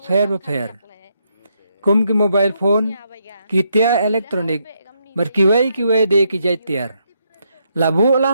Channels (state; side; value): inverted; both; correlation -0.78